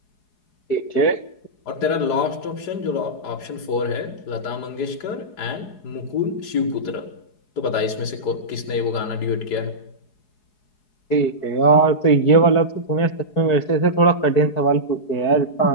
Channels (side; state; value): right; late; 4.8 ms